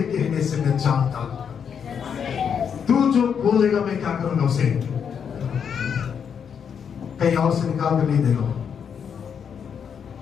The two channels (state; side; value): quieter; right; 7.3 dB